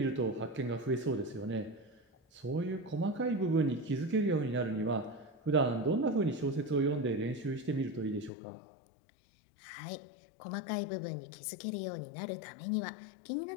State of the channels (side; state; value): right; drops out; at 8.3 s